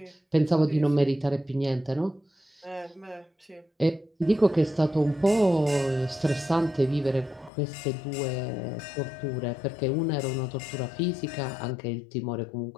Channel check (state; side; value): drops out; right; at 7.5 s